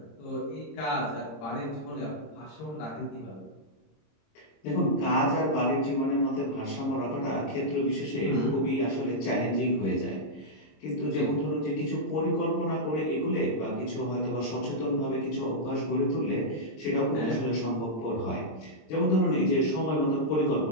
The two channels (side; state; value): right; late; 26 ms